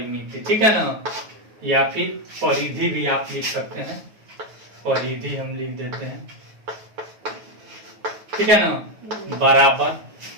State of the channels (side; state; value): left; late; 9.3 ms